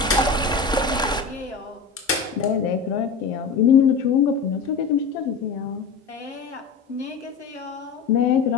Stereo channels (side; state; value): right; quieter; 5.1 dB